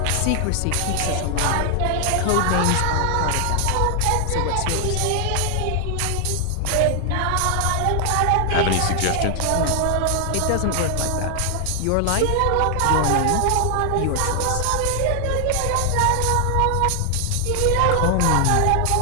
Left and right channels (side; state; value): both; different; correlation 0.00